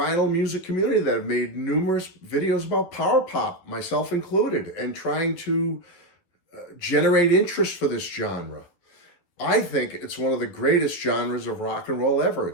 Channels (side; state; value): right; late; 12 ms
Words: music community that have made numerous videos about power pop, myself included, and trying to generate interest for this genre. I think it's one of the greatest genres of rock and roll ever.